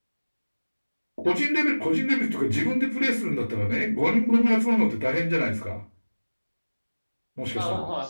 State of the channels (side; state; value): both; inverted; correlation -1.00